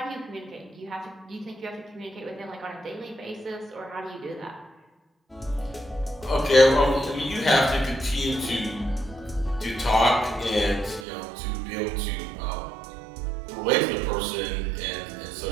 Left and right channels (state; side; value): drops out; left; at 11.1 s